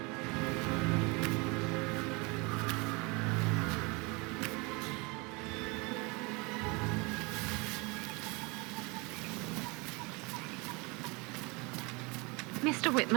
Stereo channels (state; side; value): quieter; left; 27.7 dB